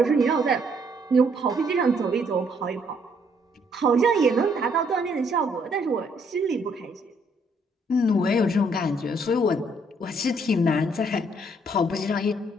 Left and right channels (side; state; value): both; normal; correlation 0.68